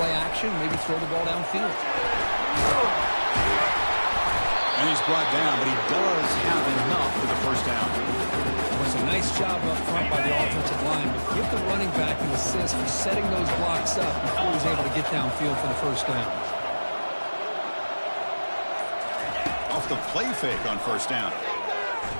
action, maybe throw the ball downfield. And he's brought down, but he does have enough for the first down. It was a nice job up front by the offensive line, but give the running back an assist for setting those blocks up before he was able to get downfield for the first down. Off the play fake on first down.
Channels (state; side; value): inverted; both; correlation -1.00